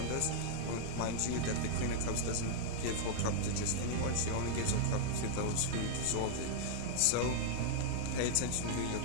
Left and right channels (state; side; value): different; both; correlation -0.01